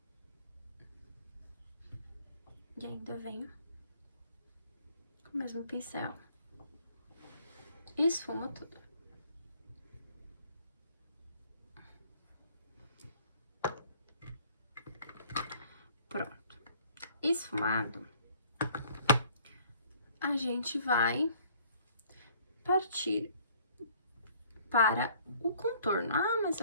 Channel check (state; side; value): inverted; both; correlation -0.58